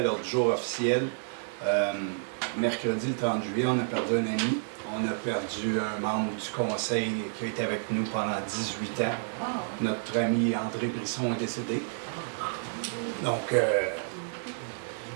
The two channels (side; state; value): left; silent; digital silence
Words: l'ordre du jour officiel, mercredi le 30 juillet, on a perdu un ami. On a perdu un membre du conseil qui a été avec nous pendant 18 ans. Notre ami André Brisson est décédé. Donc,